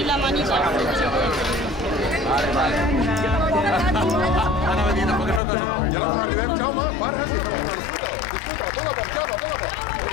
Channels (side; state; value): right; drops out; at 5.4 s